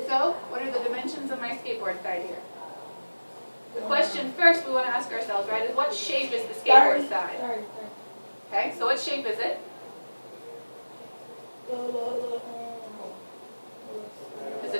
So what are the dimensions of my skateboard side here? The question first we want to ask ourselves, right, is what shape is the skateboard side? Okay, so what shape is it? Is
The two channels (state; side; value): inverted; both; correlation -1.00